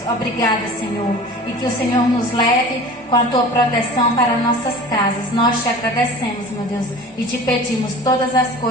Obrigada, Senhor. E que o Senhor nos leve com a Tua proteção para nossas casas. Nós te agradecemos, meu Deus, e te pedimos todas as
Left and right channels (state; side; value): normal; both; correlation 0.39